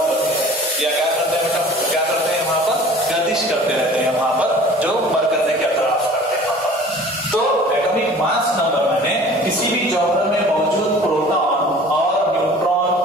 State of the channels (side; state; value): both; normal; correlation 0.46